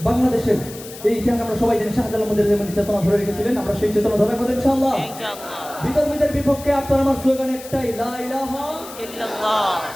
বাংলাদেশের এই ইতিহাস আমরা সবাই জানি শাহজালাল মধ্যে যেমন চেতনা ধরে রেখেছিলেন আমরা সেই চেতনা ধরে রাখবো ইনশাআল্লাহ বিতর্কিতের বিপক্ষে আপনার আমার স্লোগান একটাই লা ইলাহা ইল্লাল্লাহ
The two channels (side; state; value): left; noise; hiss, 15 dB below the sound